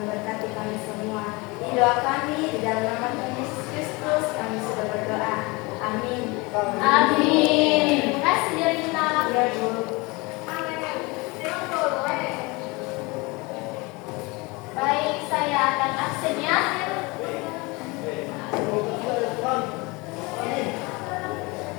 berkati kami semua. Ini doa kami di dalam nama Tuhan Yesus Kristus, kami sudah berdoa. Amin. Amin. Terima kasih Jarina. Ya, Bu. Baik, saya akan absennya.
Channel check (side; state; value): right; quieter; 25.4 dB